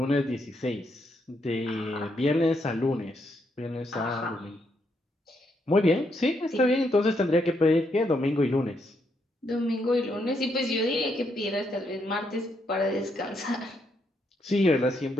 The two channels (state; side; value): normal; both; correlation 0.77